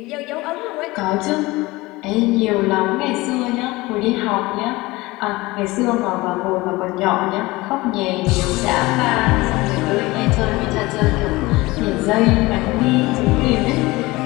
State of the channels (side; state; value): right; quieter; 21.1 dB